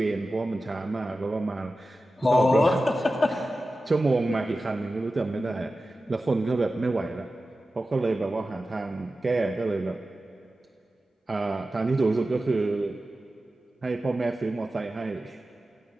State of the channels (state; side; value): normal; both; correlation 0.94